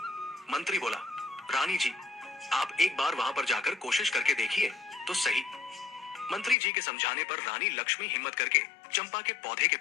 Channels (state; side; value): drops out; right; at 6.6 s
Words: मंत्री बोला, रानी जी, आप एक बार वहां पर जाकर कोशिश करके देखिए तो सही। मंत्री जी के समझाने पर रानी लक्ष्मी हिम्मत करके चंपा के पौधे के